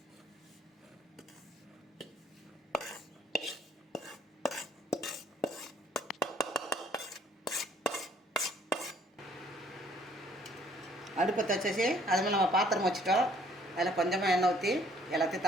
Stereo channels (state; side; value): normal; both; correlation 0.61